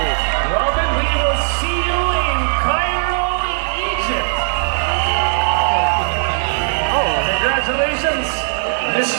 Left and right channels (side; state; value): left; silent; digital silence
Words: Robin, we will see you in Cairo, Egypt. Congratulations,